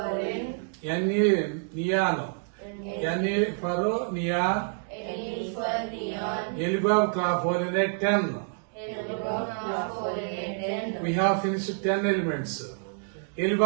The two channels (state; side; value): silent; left; 59 dB below the other